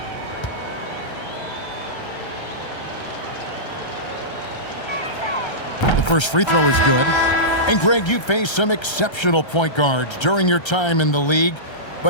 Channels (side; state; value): right; late; 1.3 ms